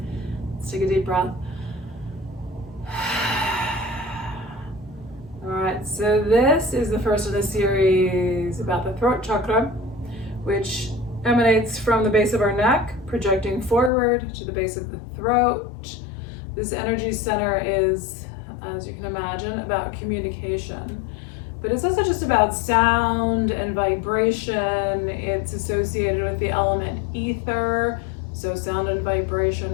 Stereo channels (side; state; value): right; drops out; at 13.9 s